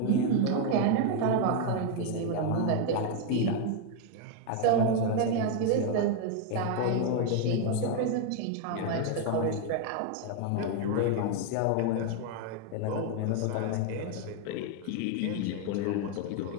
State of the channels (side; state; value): both; different; correlation 0.01